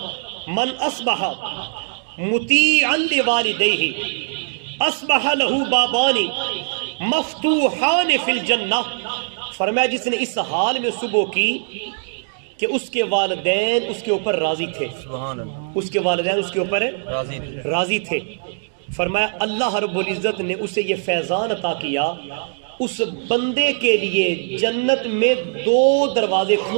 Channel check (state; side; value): silent; left; 65 dB below the other